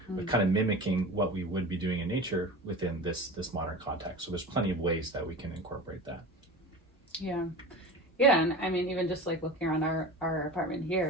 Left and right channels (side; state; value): both; normal; correlation 0.32